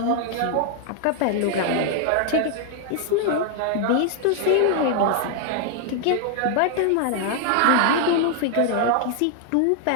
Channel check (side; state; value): both; different; correlation 0.00